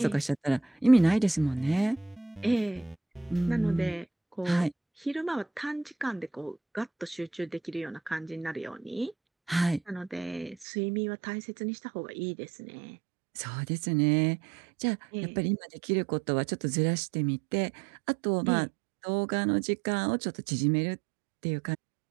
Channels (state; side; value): drops out; left; at 10.7 s